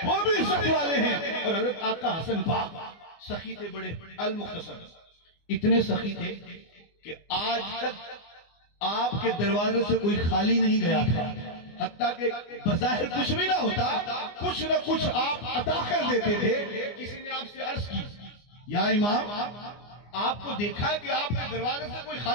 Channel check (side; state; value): right; late; 24 ms